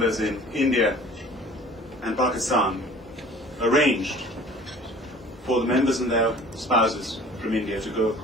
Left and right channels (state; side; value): normal; both; correlation 0.47